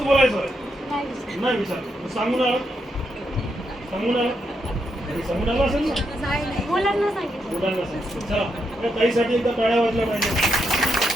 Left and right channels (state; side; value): normal; both; correlation 0.81